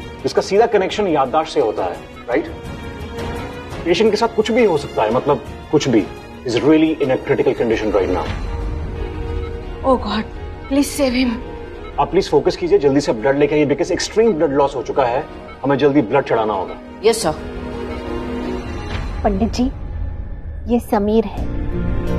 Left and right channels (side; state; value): both; identical; correlation 1.00